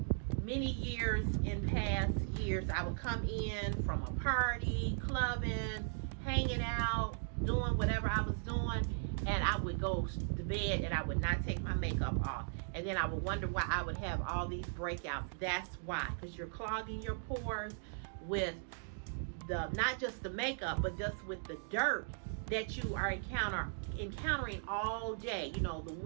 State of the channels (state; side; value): silent; left; digital silence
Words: many years in past years. I would come in from a party, clubbing, hanging out, doing whatever I was doing, and I would go to bed and I would not take my makeup off. And then I would wonder why I would have all these breakouts. That's why, because you're clogging your pores with the, not just the makeup, but just with the dirt that you are encountering all day. You know, the